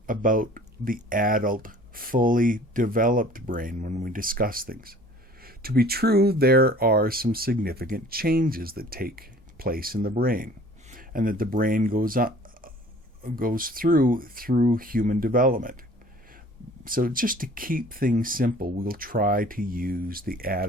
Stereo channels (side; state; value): both; normal; correlation 0.50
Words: about the adult, fully developed brain when we discuss things. To be true, there are some significant changes that take place in the brain, and that the brain goes through human development. So just to keep things simple, we'll try to use the